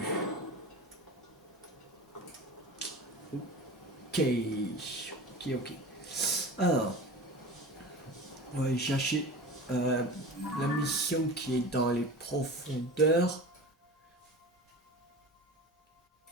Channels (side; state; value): both; normal; correlation 0.33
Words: Ok, ok. Alors, on va aller chercher la mission qui est dans les profondeurs.